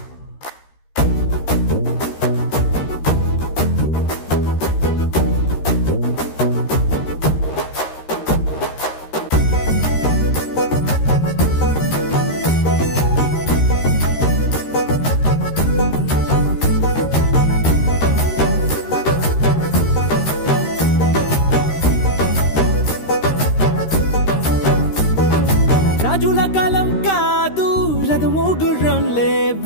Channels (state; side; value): late; right; 13 ms